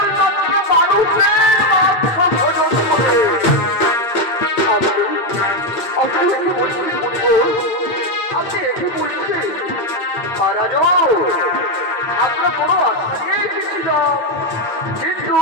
মানুষের মাত্র ভোজন করে। আপনি একে বলছেন আপনি একে বলছেন মহারাজ, আমরা কোনো আশা নিয়ে এসেছিলাম, কিন্তু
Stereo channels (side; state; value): right; late; 8.6 ms